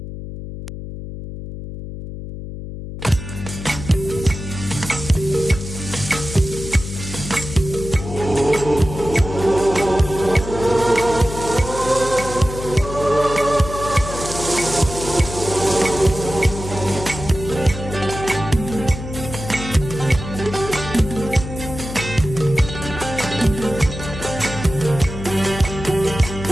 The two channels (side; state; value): left; noise; hum, 9 dB below the sound